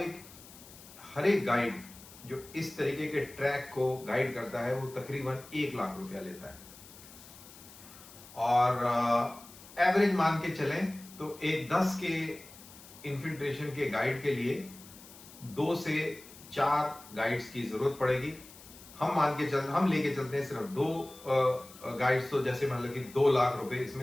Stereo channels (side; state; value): left; noise; hiss, 19 dB below the sound